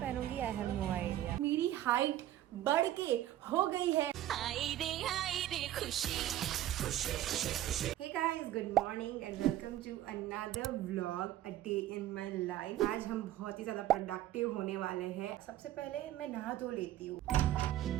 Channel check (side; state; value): left; quieter; 13.2 dB